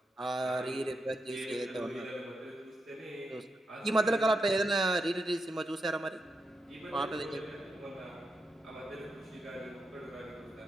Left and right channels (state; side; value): normal; both; correlation 0.85